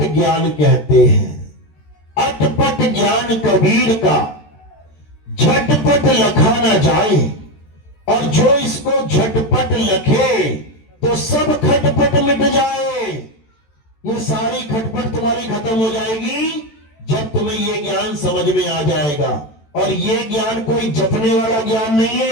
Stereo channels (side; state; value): right; late; 13 ms